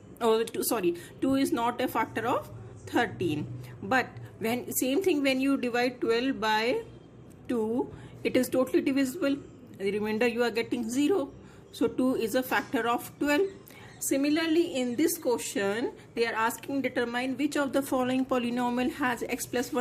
Oh, 2 is not a factor of 13. But when same thing, when you divide 12 by 2, it is totally divisible. The remainder you are getting 0. So 2 is a factor of 12. Similarly, in this question, they are asking determine which of the following polynomial has x plus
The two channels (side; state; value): both; identical; correlation 1.00